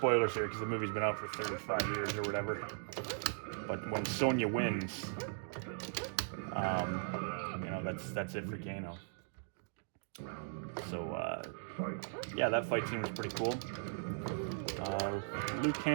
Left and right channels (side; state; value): left; silent; digital silence